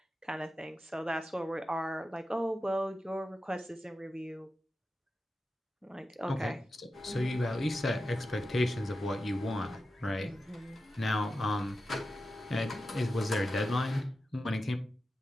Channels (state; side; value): normal; both; correlation 0.91